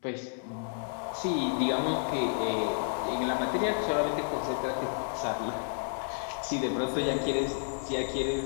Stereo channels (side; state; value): right; silent; digital silence